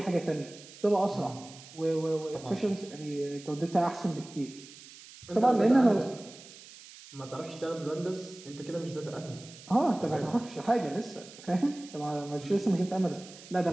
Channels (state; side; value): noise; right; hiss, 18 dB below the sound